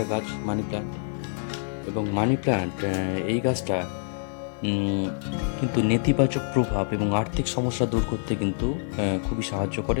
গাছ, মানি প্ল্যান্ট। এবং মানি প্ল্যান্ট এই গাছটা কিন্তু নেতিবাচক প্রভাব এবং আর্থিক সমস্যা দূর করতে কিন্তু খুবই সাহায্য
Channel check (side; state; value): right; silent; digital silence